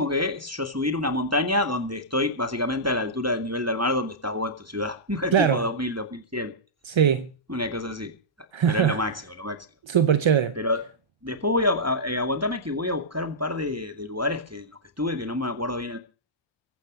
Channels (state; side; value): normal; both; correlation -0.13